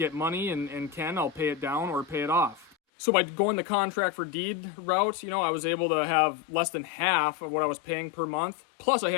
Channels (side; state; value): right; drops out; at 2.8 s